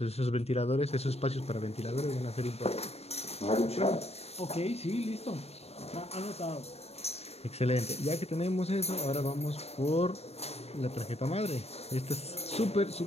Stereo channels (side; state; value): right; late; 0.30 ms